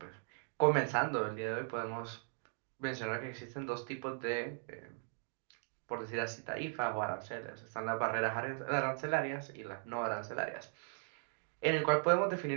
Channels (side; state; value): left; silent; 52 dB below the other